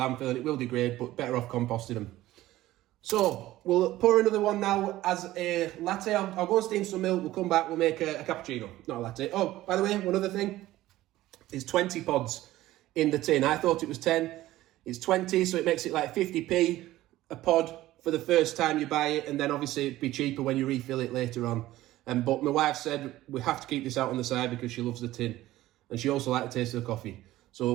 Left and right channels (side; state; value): left; quieter; 15.8 dB